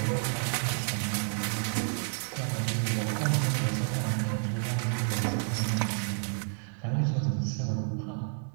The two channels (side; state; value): left; silent; 56 dB below the other